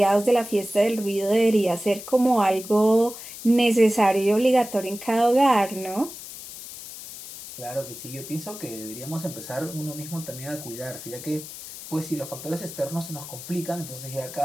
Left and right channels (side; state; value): left; noise; hiss, 13 dB below the sound